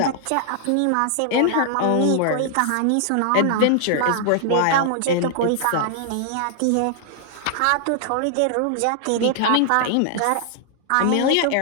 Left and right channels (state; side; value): different; both; correlation -0.01